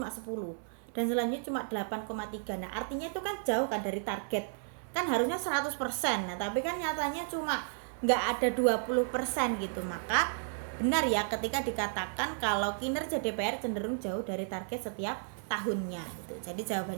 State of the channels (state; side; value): silent; left; digital silence